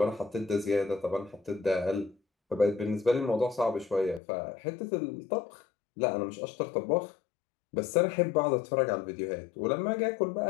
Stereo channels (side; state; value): right; drops out; at 4.2 s